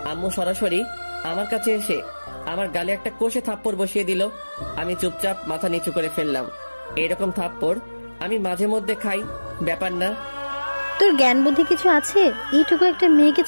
আম্মু সরাসরি আমার কাছে এসে আমার গালে একটা কষে থাপ্পড় বসিয়ে দিল। আমি চুপচাপ মাথা নিচু করে ফেললাম। এরকম থাপ্পড় আমি মাঝে মধ্যে খাই, ব্যাপার না। তোর জ্ঞান বুদ্ধি কিছু আছে? এইটুকু একটা মেয়েকে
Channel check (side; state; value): both; inverted; correlation -1.00